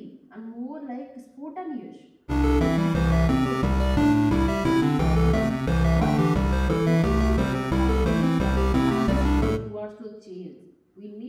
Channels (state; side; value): identical; both; correlation 1.00